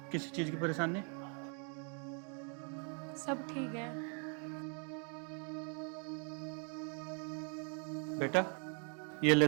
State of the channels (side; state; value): left; quieter; 39.4 dB